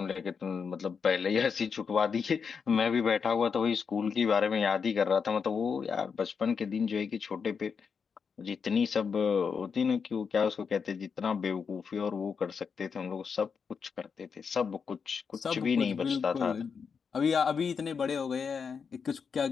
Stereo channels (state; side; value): quieter; right; 6.0 dB